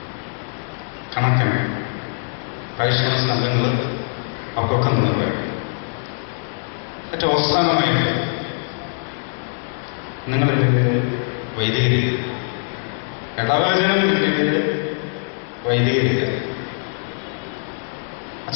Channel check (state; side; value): silent; right; digital silence